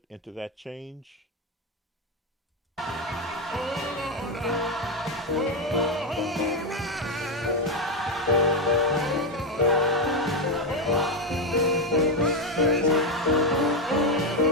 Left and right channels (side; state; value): both; normal; correlation 0.06